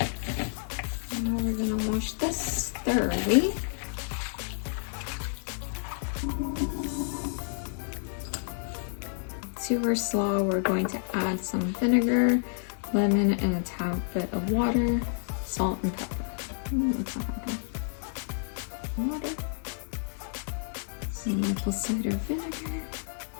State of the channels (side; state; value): right; silent; digital silence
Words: Now we're gonna wash this thoroughly. To our slaw, we're going to add some vinegar, lemon, and a tad bit of water, salt, and pepper. That's not hard. Water, some maple cider vinegar,